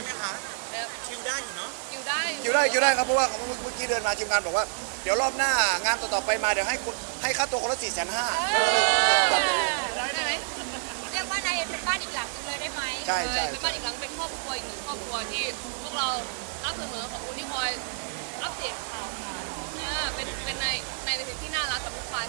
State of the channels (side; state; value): left; silent; digital silence